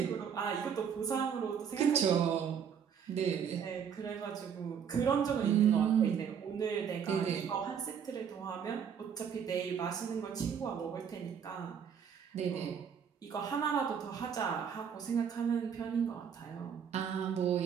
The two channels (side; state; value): left; quieter; 7.6 dB